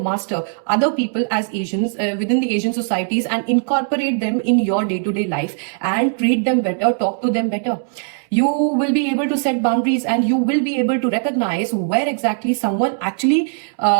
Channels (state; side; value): silent; left; 66 dB below the other